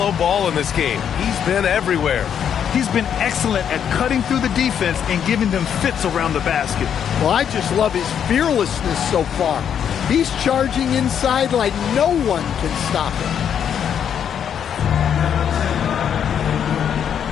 Ball in this game. He's been everywhere. He's been excellent at cutting through the defense and giving them fits around the basket. Well, I just love his fearlessness so far. He's charging inside like no one can stop him.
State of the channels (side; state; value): right; quieter; 8.5 dB